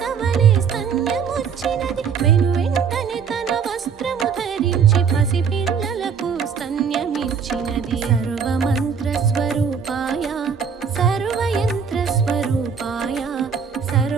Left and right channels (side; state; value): left; quieter; 6.5 dB